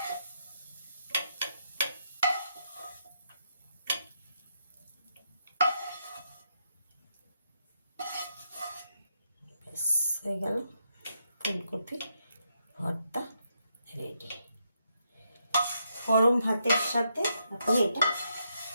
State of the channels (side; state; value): both; inverted; correlation -0.80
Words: ব্যাস হয়ে গেল, ফুলকপি ভর্তা রেডি। গরম ভাতের সাথে আপনি এটা